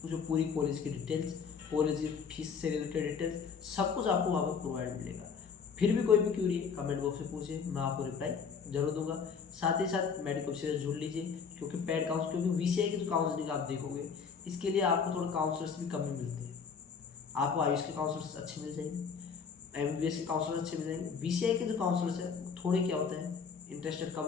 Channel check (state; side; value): quieter; right; 6.1 dB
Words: उसमें पूरी कॉलेज की डिटेल्स, कॉलेज की फीस से रिलेटेड डिटेल्स सब कुछ आपको वहाँ पर प्रोवाइड मिलेगा। फिर भी कोई भी क्यूरी है कमेंट बॉक्स में पूछिए, मैं आपको रिप्लाई जरूर दूंगा। साथ ही साथ मेडिकल से जुड़ लीजिए, क्योंकि पेड काउंसलिंग, क्योंकि वीसीआई की जो काउंसलिंग आप देखोगे इसके लिए आपको थोड़ा काउंसलर्स भी कमी मिलती है। आपको आयुष के काउंसलर्स अच्छे मिल जाएंगे, एमबीबीएस के काउंसलर्स अच्छे मिल जाएंगे। वीसीआई के जो काउंसलर्स है थोड़े क्या होते हैं, इंटरेस्टेड कम